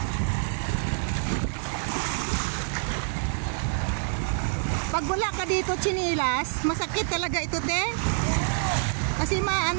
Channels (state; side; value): silent; left; 60 dB below the other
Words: Pag wala ka dito chinilas, masakit talaga ito, te. Kasi